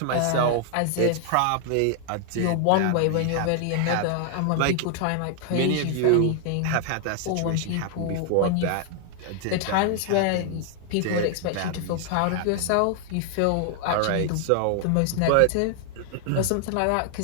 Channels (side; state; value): both; different; correlation 0.00